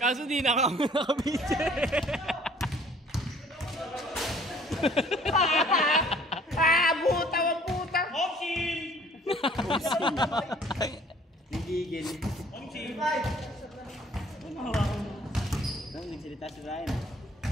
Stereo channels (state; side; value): normal; both; correlation 0.56